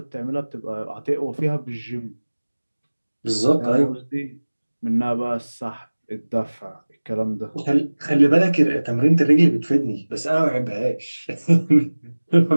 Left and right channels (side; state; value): both; inverted; correlation -1.00